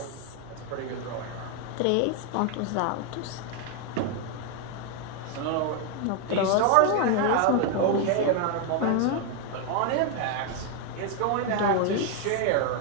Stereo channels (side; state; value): both; different; correlation 0.01